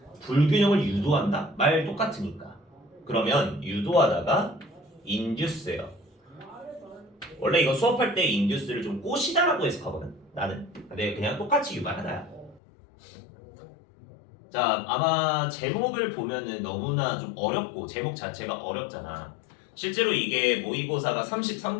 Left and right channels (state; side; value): drops out; right; at 12.6 s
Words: 불균형을 유도한다? 말 똑같으니까. 그러면 유도하다가 induce예요. 원래 이거 수업할 때 induce를 좀 꼬시다라고 해석하거든. 나는. 근데 그냥 똑같이 유발하다야. 자, 아마 제목을 보면은 너무나 좀 어렵고 제목 자체가 어렵잖아. 실제로 이게 모의고사가